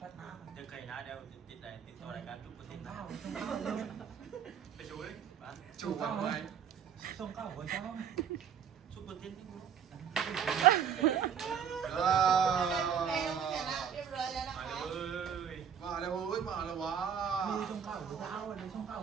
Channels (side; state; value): left; quieter; 7.8 dB